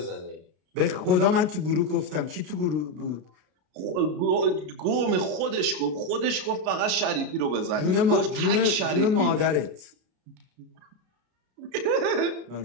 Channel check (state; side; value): late; left; 33 ms